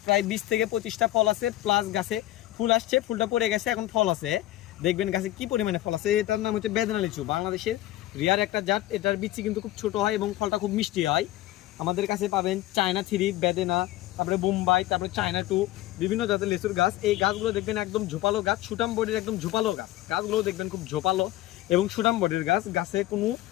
প্রায় 20 থেকে 25টা ফল আছে, প্লাস গাছে ফুল আসছে, ফুলটা পড়ে গেছে, এখন ফল আছে। দেখবেন গাছে কি পরিমাণে ফল আছে। এটার নাম হচ্ছে বেদেনা লিচু। বাংলাদেশের রিয়ার একটা জাত। এটার বিচি কিন্তু খুব ছোট হয় এবং ফলটা খুব মিষ্টি হয়। আমাদের কাছে পাবেন চায়না 3, বেদেনা, তারপরে বোম্বাই, তারপরে চায়না 2, বিভিন্ন জাতের লিচুর গাছ। এই গাছগুলো দেখবেন একদম ঝোপালো গাছ, সুটাম বডির একদম ঝোপালো গাছ। গাছগুলো দেখবেন খুব ঝোপালো এবং সুটাম বডির গাছ। গাছে কোনো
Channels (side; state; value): right; quieter; 15.6 dB